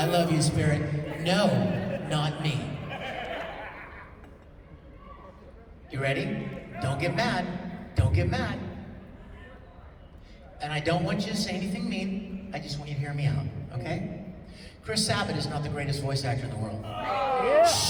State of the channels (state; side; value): identical; both; correlation 1.00